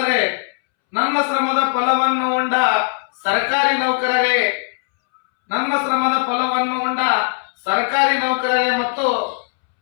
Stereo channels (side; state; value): right; silent; 67 dB below the other